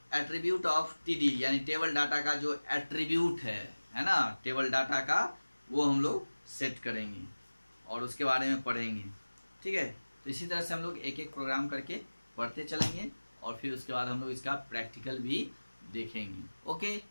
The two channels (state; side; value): inverted; both; correlation -1.00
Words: एट्रीब्यूट ऑफ टीडी यानी टेबल डाटा का जो एट्रीब्यूट है ना, टेबल डाटा का, वो हम लोग सेट करेंगे और उसके बारे में पढ़ेंगे, ठीक है। तो इसी तरह से हम लोग एक एक प्रोग्राम करके पढ़ते चलेंगे और फिर उसके बाद हम लोग इसका प्रैक्टिकल भी देखेंगे, okay.